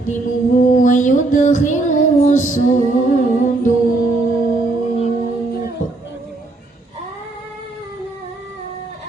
wa yudkhiluhu as-sunduq.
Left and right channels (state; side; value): quieter; left; 3.1 dB